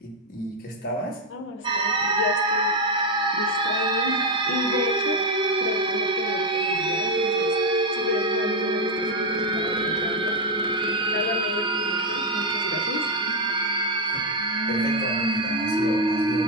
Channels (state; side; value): normal; both; correlation 0.04